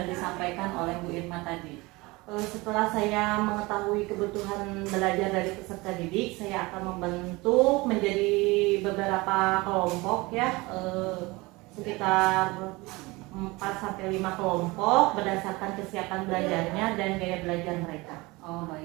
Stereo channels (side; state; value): left; quieter; 23.0 dB